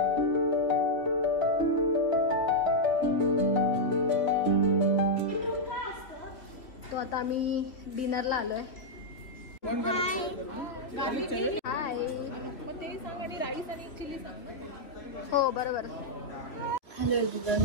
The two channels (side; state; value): right; late; 3.2 ms